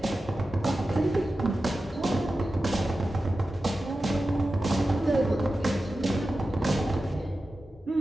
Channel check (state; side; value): normal; both; correlation 0.93